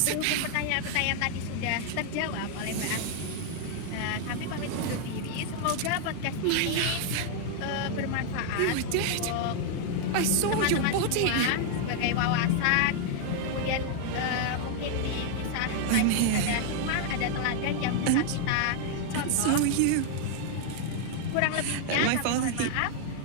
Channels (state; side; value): different; both; correlation 0.00